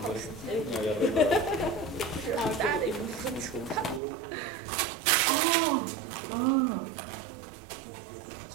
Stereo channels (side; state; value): left; drops out; at 4.0 s